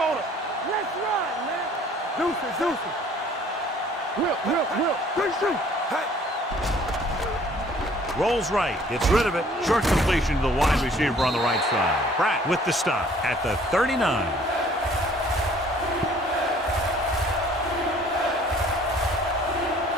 Let's run, man. Deuces. Will. Big shoot. Rolls right, gets rid of it. Short completion to the wide receiver on the right side. Pratt with the stop at the 39.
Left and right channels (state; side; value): normal; both; correlation 0.56